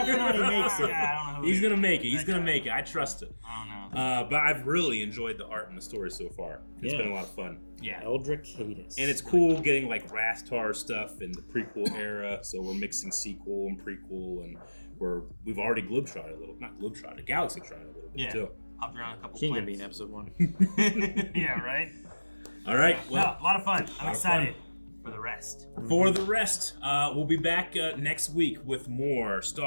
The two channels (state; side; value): inverted; both; correlation -1.00